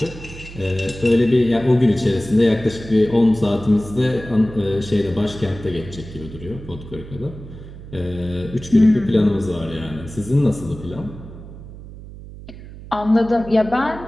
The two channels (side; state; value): right; noise; hum, 15 dB below the sound